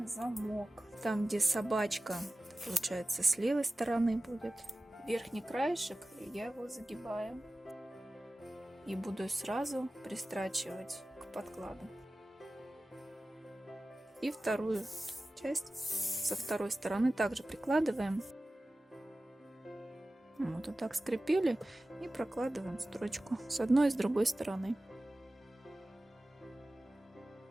замок. Там, где собачка, получается, с левой стороны будет. Верхний краешек, я его загибаю. И буду сразу пристрачивать к подкладу. И вторую часть со второй стороны также прикладываем. Вот так скрепили и прокладываем строчку с одной и с другой стороны.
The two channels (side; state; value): both; normal; correlation 0.96